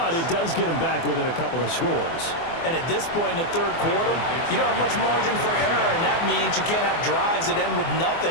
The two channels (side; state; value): right; late; 24 ms